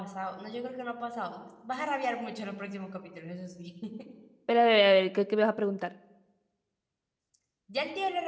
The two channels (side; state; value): both; identical; correlation 1.00